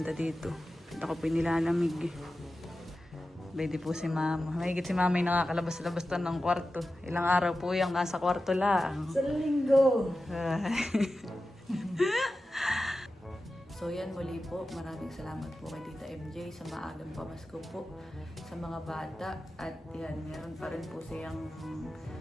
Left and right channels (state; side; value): normal; both; correlation 0.93